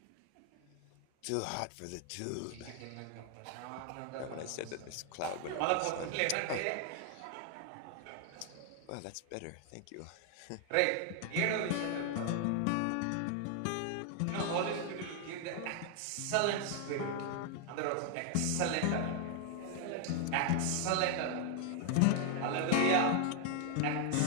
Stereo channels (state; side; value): different; both; correlation 0.00